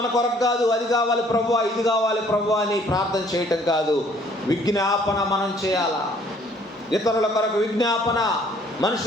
కొరకు కాదు, అది కావాలి ప్రభువా, ఇది కావాలి ప్రభువా అని ప్రార్థన చేయటం కాదు, విజ్ఞాపన మనం చేయాలా. ఇతరుల కొరకు విజ్ఞాపన,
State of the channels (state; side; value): normal; both; correlation 0.60